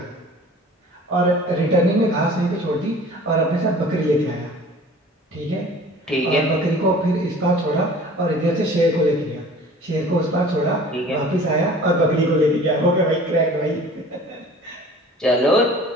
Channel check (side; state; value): both; normal; correlation 0.46